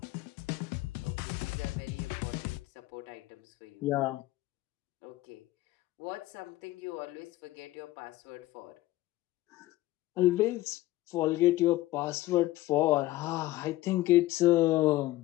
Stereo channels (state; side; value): quieter; right; 17.0 dB